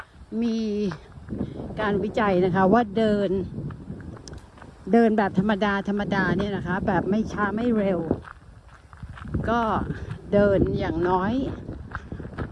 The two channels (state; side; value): identical; both; correlation 1.00